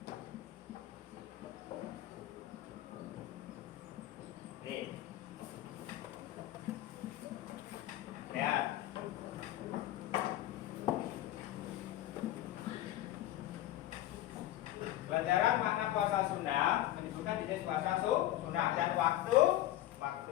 Nih. Ya. Pelajaran makna puasa sunnah menyebutkan jenis puasa sunnah dan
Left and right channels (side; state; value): right; quieter; 14.3 dB